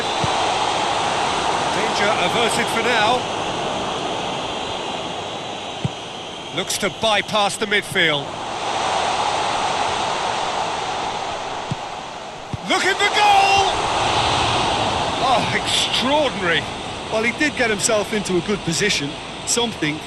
Danger averted for now. Looks to bypass the midfield. Looking for goal! Oh, extraordinary. Well, he did get himself into a good position. Something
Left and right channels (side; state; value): both; identical; correlation 1.00